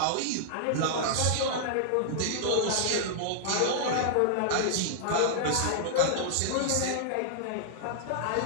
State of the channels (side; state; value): both; different; correlation -0.01